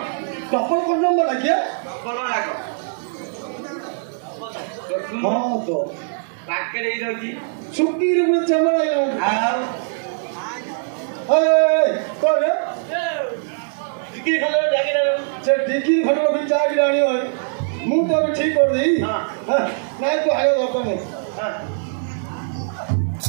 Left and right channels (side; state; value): left; silent; digital silence